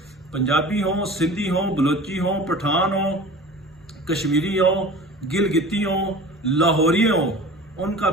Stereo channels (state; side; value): normal; both; correlation 0.40